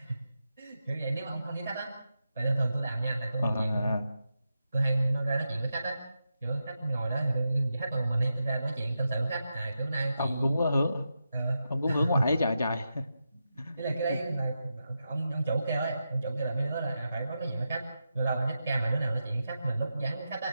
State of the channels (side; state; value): both; inverted; correlation -0.88